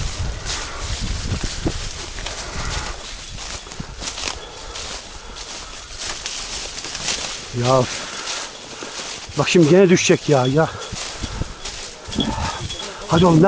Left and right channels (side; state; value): both; identical; correlation 1.00